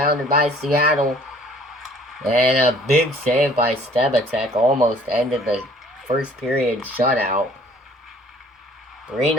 by Seattle. And a big save by Stebacek almost ended the first period shutout.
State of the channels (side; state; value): both; normal; correlation 0.55